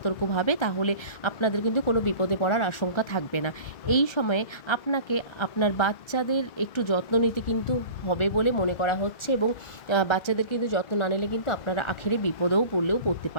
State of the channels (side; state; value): right; late; 1.3 ms